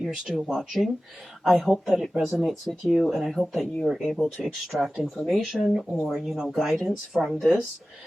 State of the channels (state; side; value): normal; both; correlation 0.96